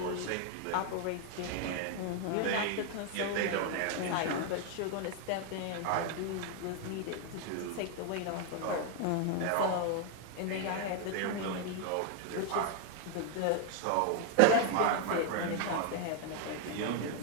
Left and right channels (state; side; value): different; both; correlation 0.01